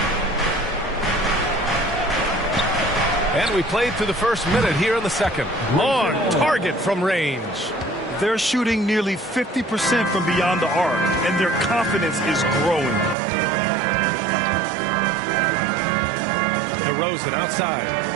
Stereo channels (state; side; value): drops out; left; at 13.2 s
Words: And we played through the first minute here in the second. On target from range. They're shooting nearly 50% from beyond the arc, and their confidence is growing. DeRozan outside.